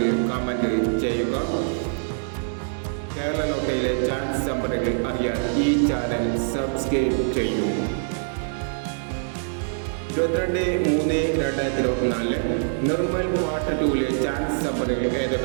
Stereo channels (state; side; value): silent; left; digital silence